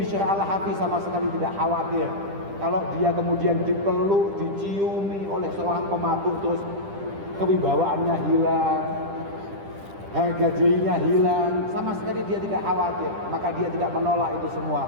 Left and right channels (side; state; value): left; late; 10 ms